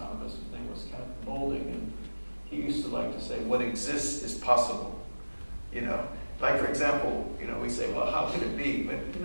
His name was Kenneth Molding, and he used to like to say, what exists is possible. You know, like for example, you know, we say, well, how could it be? But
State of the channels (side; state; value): both; inverted; correlation -1.00